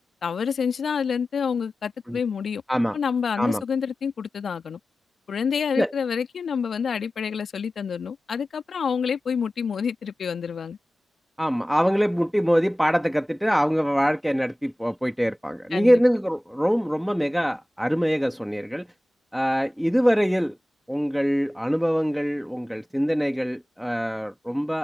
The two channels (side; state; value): both; normal; correlation 0.96